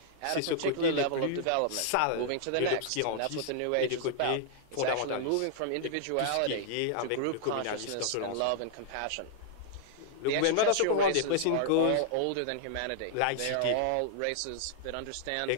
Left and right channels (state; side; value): different; both; correlation -0.01